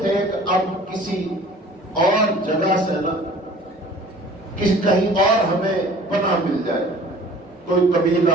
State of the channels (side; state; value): both; normal; correlation 0.48